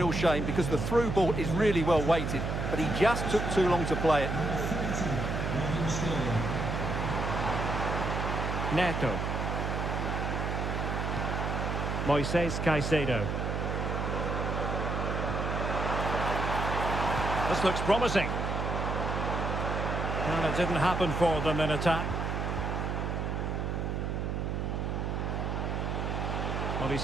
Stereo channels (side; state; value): right; noise; hum, 1 dB below the sound